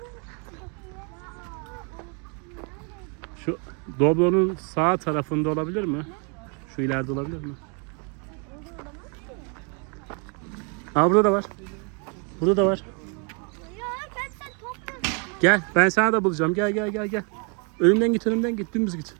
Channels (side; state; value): left; quieter; 36.6 dB